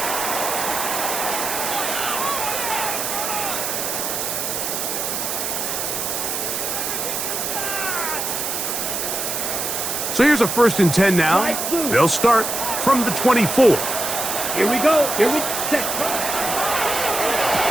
So here's a 1st and 10 now. They'll start from the 24. Here we go. Here we set.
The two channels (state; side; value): noise; right; hiss, 2 dB below the sound